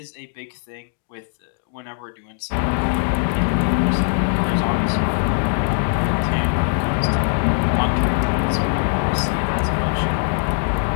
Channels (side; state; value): right; silent; 60 dB below the other